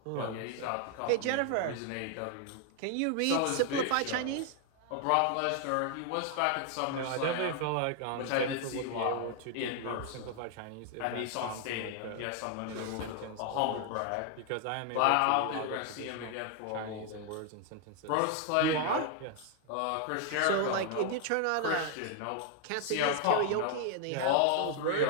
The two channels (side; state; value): both; different; correlation 0.00